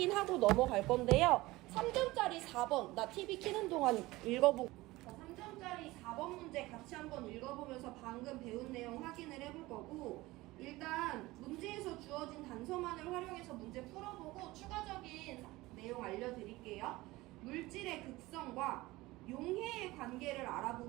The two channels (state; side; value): quieter; left; 19.6 dB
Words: 넘어갈 건데요. 3점짜리 4번 나 TV 켜는 동안 읽어보고 3점짜리 4번 문제 같이 한번 읽어보면서 방금 배운 내용 확인을 해볼 거고, 일단 문제에서 주어진 단서만을 활용해서 문제 풀어보고 추가적인 내용 알려드릴게요. 물질의 극성과 용해의 관계를